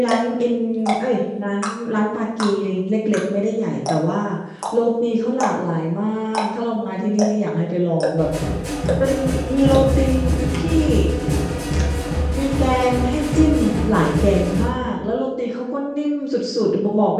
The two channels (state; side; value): identical; both; correlation 1.00